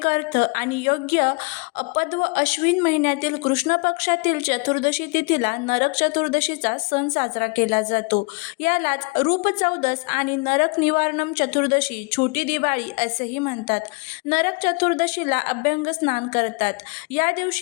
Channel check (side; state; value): right; quieter; 30.7 dB